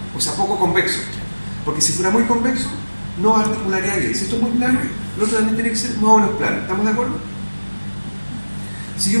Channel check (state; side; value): inverted; both; correlation -1.00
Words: o sea, poco convexo. Porque si fuera muy convexo, no articularía bien. Si esto es muy plano, lo otro también tiene que ser más o menos plano. ¿Estamos de acuerdo? Si yo